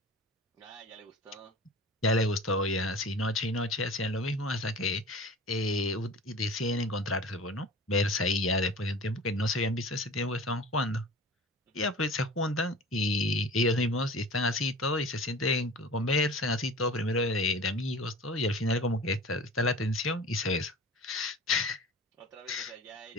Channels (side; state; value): both; normal; correlation 0.39